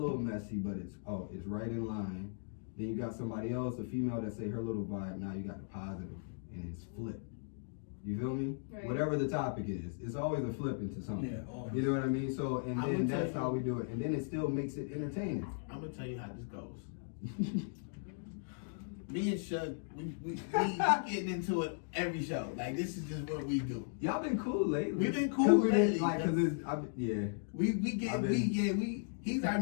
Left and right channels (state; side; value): silent; right; digital silence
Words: messy, but it's right in line. Then you got somebody else, a female, that say her little vibe. Now you got the positive, and it's flipped. You feel me? Right. Whatever the topic is, it's always a flip into something. Yeah, always. You know what I mean? So, and I then would tell that's you- how we do it. And then it still makes it entertaining. I'm gonna tell you how this goes. Me and Shug, we getting into it every show. Like this is just what we do. Y'all been cool lately. We've been cool lately. He's our